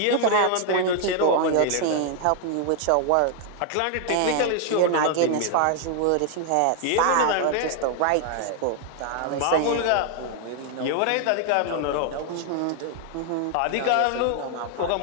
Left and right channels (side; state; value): both; different; correlation 0.00